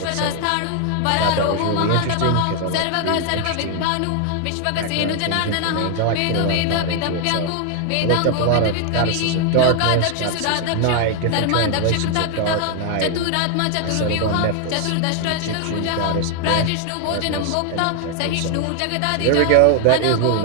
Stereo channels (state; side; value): different; both; correlation 0.00